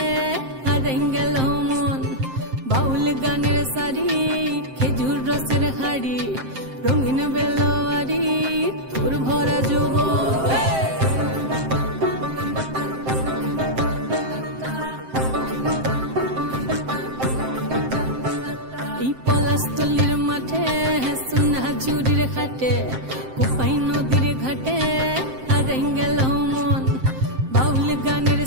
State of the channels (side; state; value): left; late; 7.6 ms